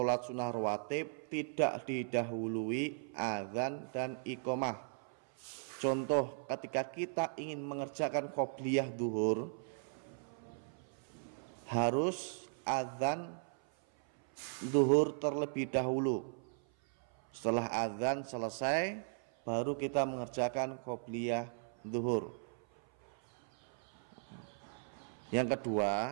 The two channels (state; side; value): silent; left; 53 dB below the other